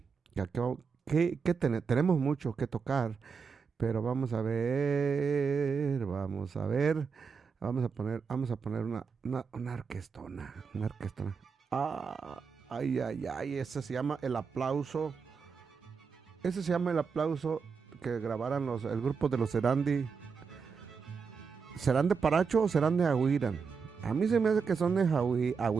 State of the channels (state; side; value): quieter; left; 5.6 dB